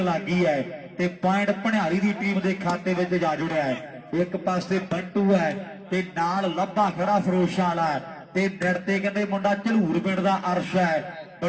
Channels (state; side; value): identical; both; correlation 1.00